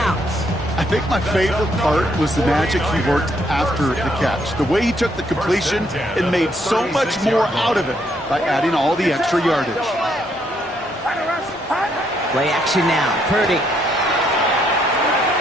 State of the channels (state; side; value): normal; both; correlation 0.72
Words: I think my favorite part was the magic he worked after the catch. The way he took the completion and made so much more out of it by adding all the extra yardage. Play action now, Purdy.